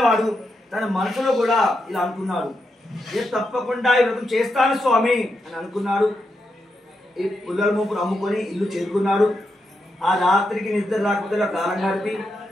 తన మనసులో కూడా ఇలా అనుకున్నాడు, నేను తప్పకుండా ఈ వ్రతం చేస్తాను స్వామి అని అనుకున్నాడు. ఈ పుల్లల మూపును అమ్ముకొని ఇల్లు చేరుకున్నాడు. ఆ రాత్రికి నిద్ర రాకపోతే కాలం గడిపి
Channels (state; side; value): normal; both; correlation 0.84